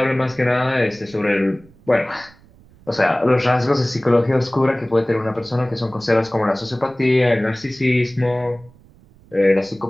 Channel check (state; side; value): noise; right; rumble, 27 dB below the sound